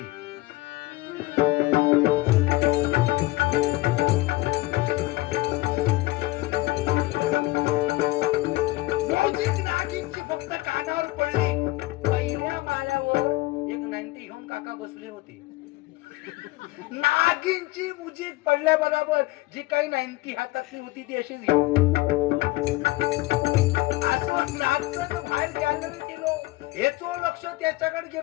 नागिनची फक्त कानावर पडली, पहिल्या माळ्यावर एक 90 घेऊन काका बसले होते. नागिनची म्युझिक पडल्या बरोबर जी काही 90 हातातली होती ती अशीच असं नाचत बाहेर गॅलरी गेलो, हेचो लक्ष त्याच्याकडे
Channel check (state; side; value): quieter; right; 20.1 dB